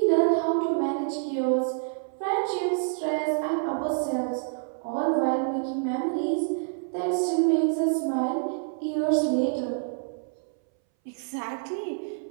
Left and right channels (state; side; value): silent; left; 60 dB below the other